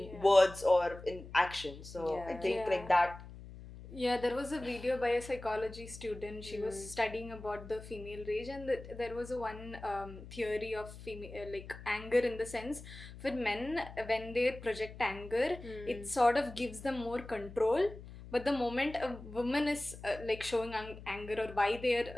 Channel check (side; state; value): left; noise; hum, 15 dB below the sound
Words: words or in action. So I think like that. Yeah, there was a video by a psychology student. She was studying about the female rage, and there was a one theory of female like anger, in the sense for men, when they project anger, it sort of gives them more control. But the moment a woman is like showing anger, or why they are